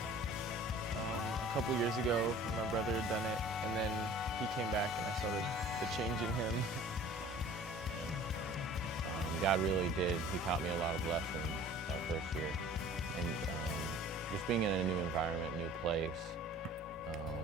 a couple years ago when my brother had done it, and then he came back and I saw the change in him. God really did. He taught me a lot of lessons that first year. And just being in a new environment, new place,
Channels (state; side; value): normal; both; correlation 0.47